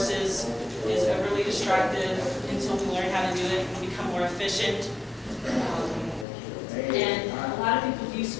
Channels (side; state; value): right; drops out; at 6.2 s